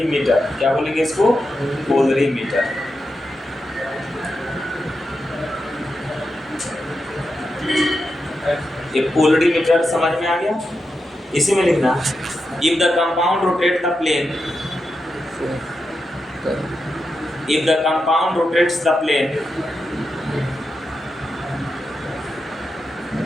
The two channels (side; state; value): both; normal; correlation 0.88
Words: क्या बोलेंगे इसको, polarimeter। ये polarimeter समझ में आ गया। इसी में लिखना, if the compound rotates the plane